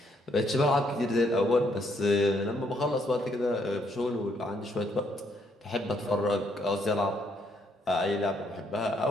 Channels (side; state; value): both; normal; correlation 0.71